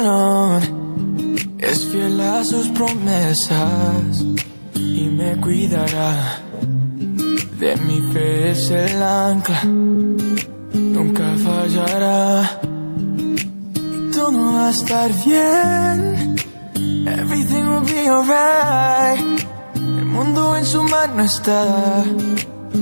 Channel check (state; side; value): inverted; both; correlation -1.00